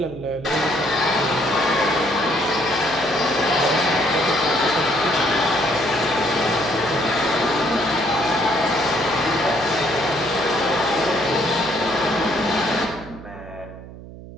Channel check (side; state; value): right; noise; hum, 15 dB below the sound